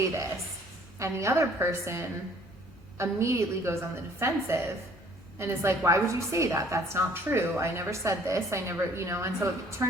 this. And the other person immediately goes on the defensive and is like, why would you say that? That's not true. I never said this. I never, and so it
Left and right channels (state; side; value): normal; both; correlation 0.56